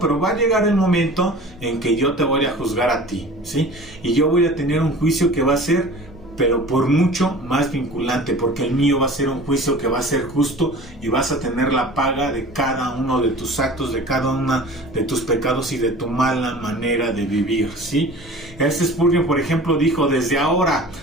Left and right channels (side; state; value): both; normal; correlation 0.41